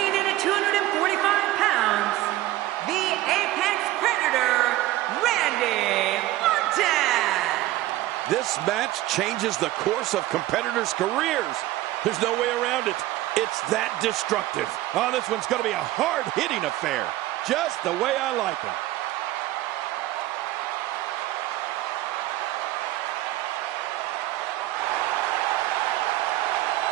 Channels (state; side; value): quieter; left; 16.0 dB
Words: in at 245 pounds, the Apex Predator, Randy Orton. This match changes the course of competitors' careers. There's no way around it. It's that destructive. Oh, this one's going to be a hard-hitting affair. Just the way I like them.